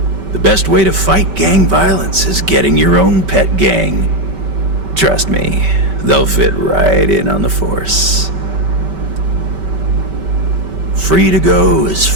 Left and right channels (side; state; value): left; late; 5.2 ms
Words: The best way to fight gang violence is getting your own pet gang. Trust me, they'll fit right in on the force. Free to go as